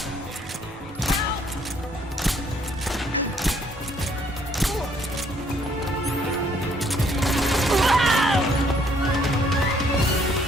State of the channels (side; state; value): both; normal; correlation 0.65